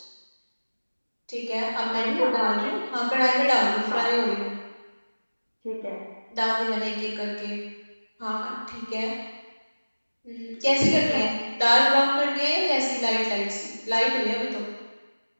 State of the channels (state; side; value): inverted; both; correlation -1.00